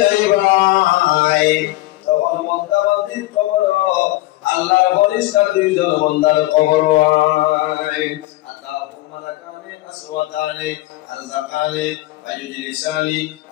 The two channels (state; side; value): quieter; right; 18.4 dB